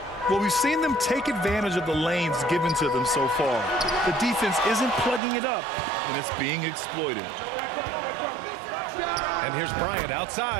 Well, we've seen them take advantage of the lanes given to them so far. The defense isn't plugging it up, and it's being exploited. And here's Bryant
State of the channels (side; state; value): left; drops out; at 5.2 s